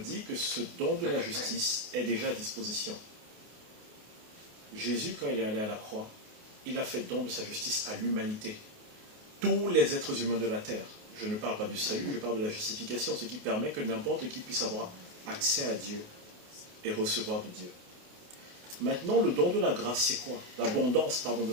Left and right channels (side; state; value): left; late; 28 ms